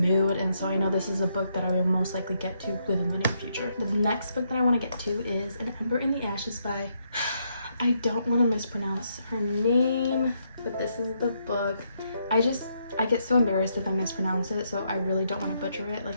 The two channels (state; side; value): inverted; both; correlation -0.77